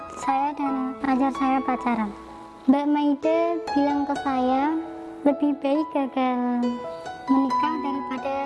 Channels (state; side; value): identical; both; correlation 1.00